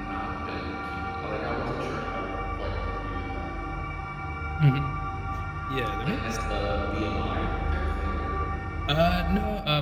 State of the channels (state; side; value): identical; both; correlation 1.00